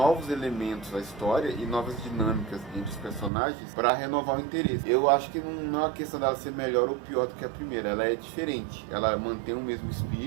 elementos à história e novas dinâmicas entre os personagens para renovar o interesse. Eu acho que não é uma questão dela ser melhor ou pior do que a primeira, ela é diferente. Ela mantém o mesmo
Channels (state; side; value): drops out; left; at 3.3 s